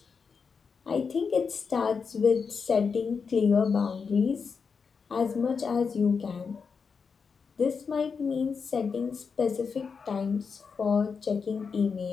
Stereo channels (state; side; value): quieter; right; 5.6 dB